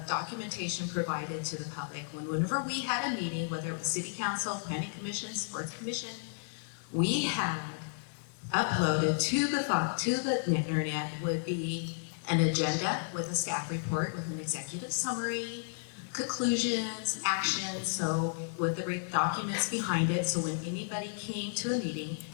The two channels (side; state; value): right; silent; digital silence